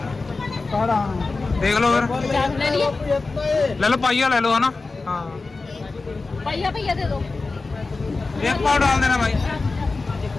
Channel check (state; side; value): quieter; right; 3.8 dB